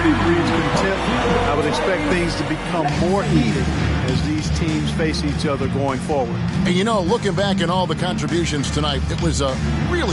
breeds contempt. I would expect things to become more heated as these teams face each other going forward. And you know, looking back at all the contributions tonight, it was a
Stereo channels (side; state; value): both; identical; correlation 1.00